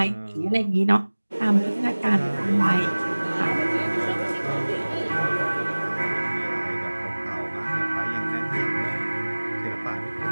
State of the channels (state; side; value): inverted; both; correlation -1.00